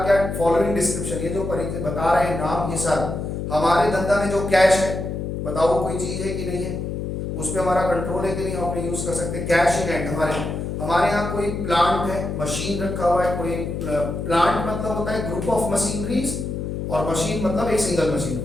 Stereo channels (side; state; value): left; noise; hum, 4 dB below the sound